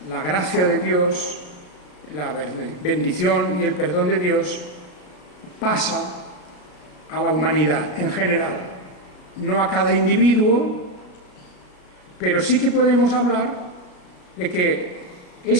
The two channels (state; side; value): late; right; 34 ms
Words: la gracia de Dios, la bendición y el perdón de Dios pasa a la humanidad en general, no a cada individuo, pero sí que podemos hablar de que